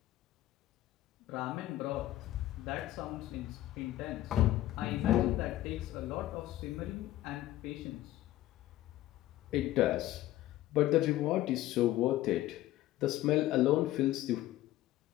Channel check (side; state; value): right; quieter; 15.0 dB